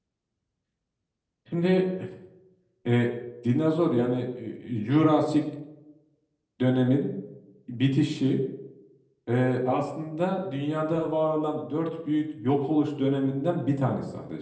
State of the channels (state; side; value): identical; both; correlation 1.00